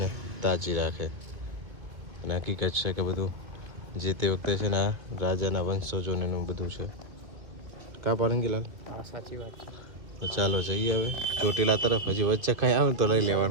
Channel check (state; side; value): late; left; 1.9 ms